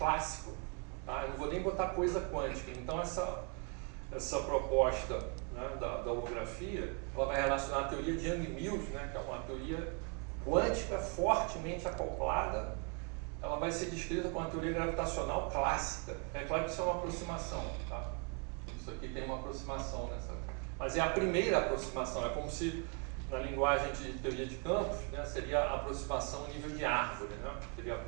tá? Eu não vou nem botar coisa quântica. Então essa proposta, né, da holografia, ela vai relacionar a teoria de Yang-Mills, né, que é uma teoria quântica fortemente acoplada. Ela vai ser descrita como uma teoria gravitacional clássica. É claro que isso é uma aproximação, tá? Isso aqui tem uma aproximação nessa, mas é a primeira aproximação. É como se na linguagem de teoria de campos, né, seria a aproximação nível de árvore, né? Seria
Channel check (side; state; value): left; quieter; 35.0 dB